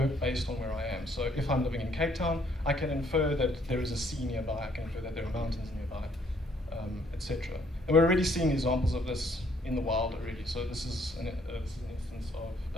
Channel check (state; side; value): normal; both; correlation 0.66